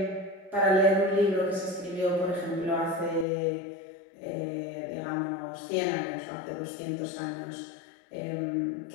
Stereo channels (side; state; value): right; drops out; at 3.2 s